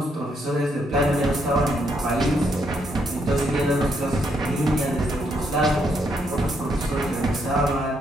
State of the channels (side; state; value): both; normal; correlation 0.75